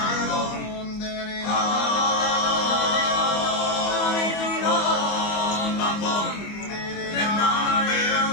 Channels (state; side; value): late; right; 25 ms